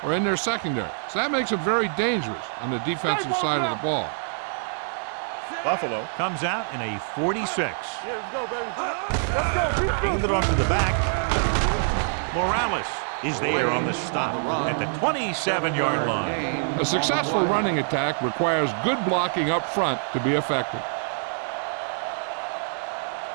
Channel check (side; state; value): left; silent; digital silence